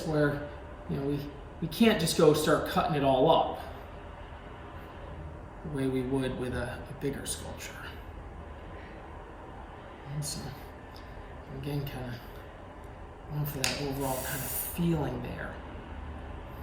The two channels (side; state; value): both; identical; correlation 1.00